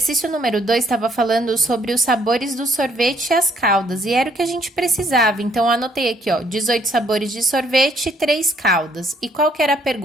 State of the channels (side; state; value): both; normal; correlation 0.66